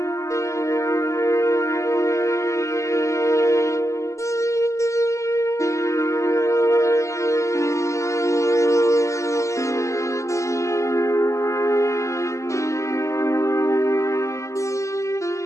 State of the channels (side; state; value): right; late; 0.15 ms